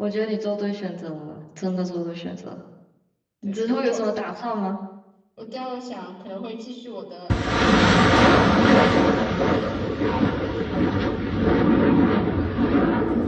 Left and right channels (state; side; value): identical; both; correlation 1.00